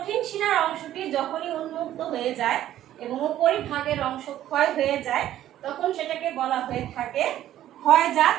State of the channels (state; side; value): quieter; left; 12.6 dB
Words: শিলার অংশটি যখনই উন্মুক্ত হয়ে যায় এবং উপরিভাগের অংশ ক্ষয় হয়ে যায়, তখন সেটাকে বলা হয়ে থাকে ক্ষয়জাত